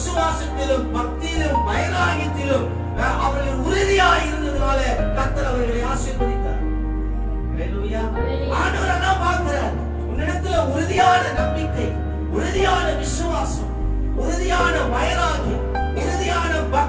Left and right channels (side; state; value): both; identical; correlation 1.00